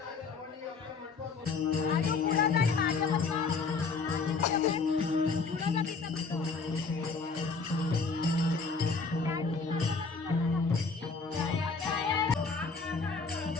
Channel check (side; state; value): right; quieter; 4.6 dB